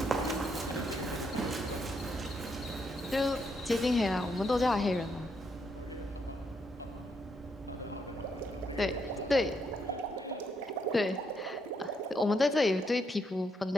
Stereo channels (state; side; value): normal; both; correlation 0.77